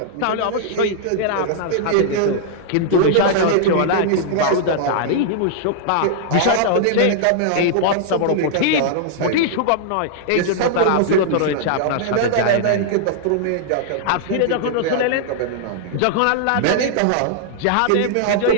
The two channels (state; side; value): different; both; correlation -0.01